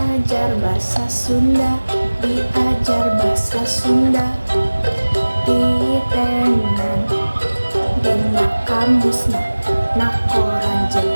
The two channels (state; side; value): inverted; both; correlation -1.00